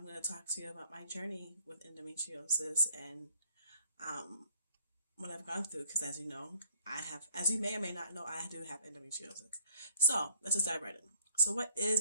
going to talk to you about my journey with endometriosis and um, what I've gone through. Because as you know, as you may or may not know, I do have endometriosis. So let's just dive right in. So, what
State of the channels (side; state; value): both; inverted; correlation -0.61